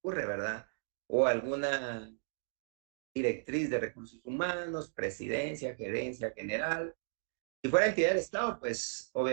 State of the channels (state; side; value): silent; left; digital silence